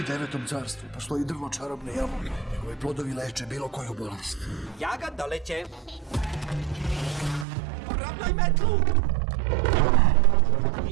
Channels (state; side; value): drops out; left; at 7.5 s